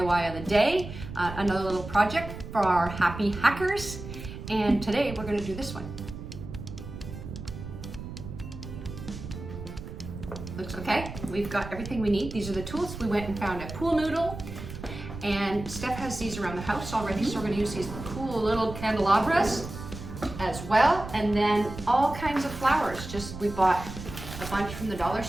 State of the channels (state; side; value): noise; right; rumble, 10 dB below the sound